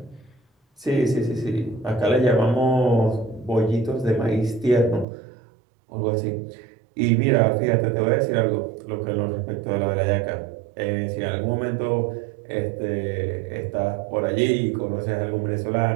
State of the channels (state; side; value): drops out; left; at 5.1 s